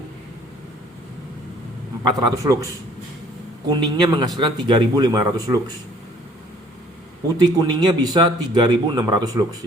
lux. Kuningnya menghasilkan 3500 lux. Putih kuningnya bisa 3600 lux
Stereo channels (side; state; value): both; normal; correlation 0.57